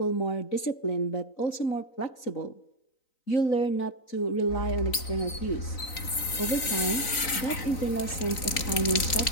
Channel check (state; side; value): late; right; 3.9 ms